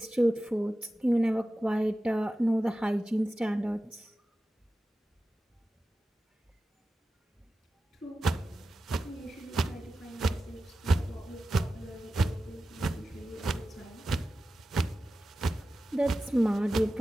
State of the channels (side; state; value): both; normal; correlation 0.94